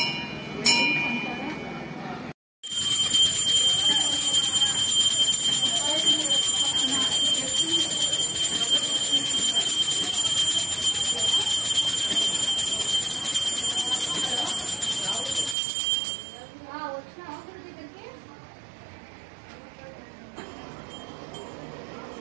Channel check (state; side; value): drops out; left; at 15.6 s